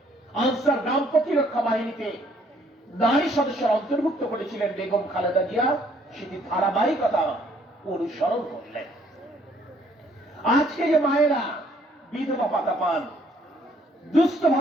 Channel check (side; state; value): both; normal; correlation 0.64